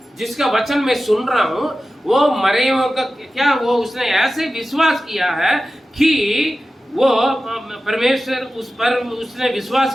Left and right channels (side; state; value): both; normal; correlation 0.94